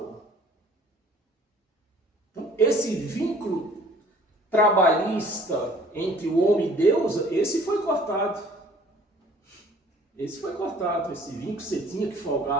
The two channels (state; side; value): normal; both; correlation 0.54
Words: Então, esse vínculo trabalhista entre o homem e Deus, esse foi cortado. Esse vínculo você tinha que